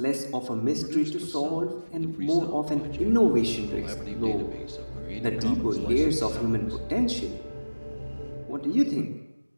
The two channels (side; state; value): both; inverted; correlation -1.00